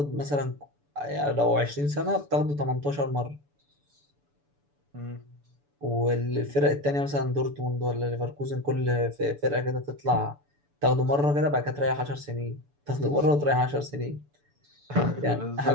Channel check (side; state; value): left; late; 6.9 ms